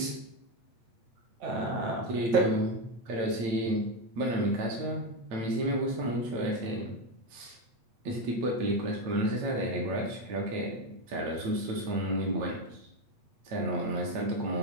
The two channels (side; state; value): left; late; 8.8 ms